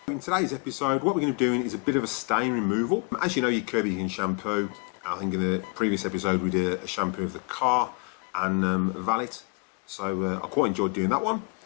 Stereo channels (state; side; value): quieter; right; 34.0 dB